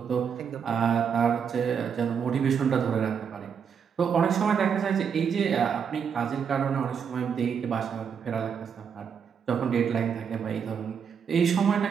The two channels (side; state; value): left; quieter; 7.1 dB